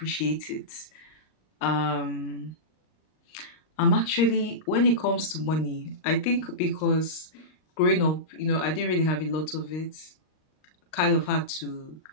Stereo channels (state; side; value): late; right; 38 ms